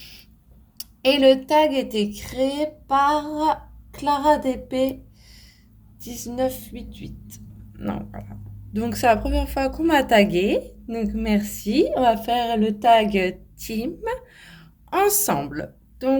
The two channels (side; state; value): both; identical; correlation 1.00